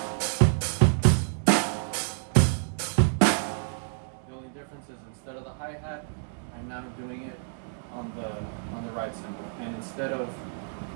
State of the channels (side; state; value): left; silent; digital silence